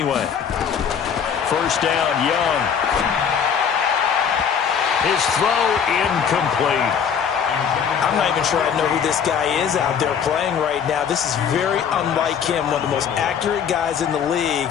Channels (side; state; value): right; quieter; 7.4 dB